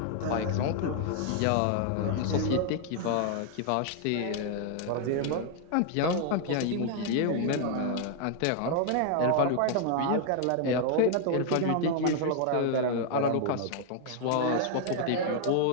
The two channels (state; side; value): different; both; correlation 0.00